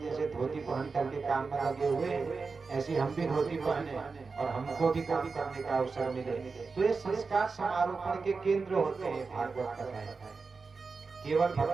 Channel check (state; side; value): quieter; left; 4.5 dB